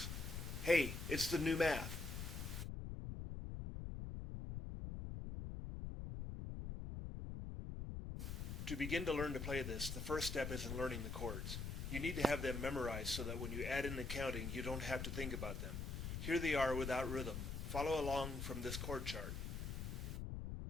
Hey, it's the new math. To begin to learn to play this, the first step is in learning the chords. You need to have them memorized so that when you add in the counting, you don't have to think about them. Here they are without rhythm. Follow along from this chord chart.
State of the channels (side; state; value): left; noise; rumble, 4 dB below the sound